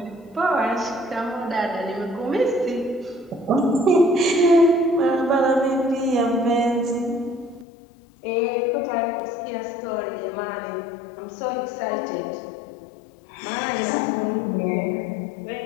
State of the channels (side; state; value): right; drops out; at 7.7 s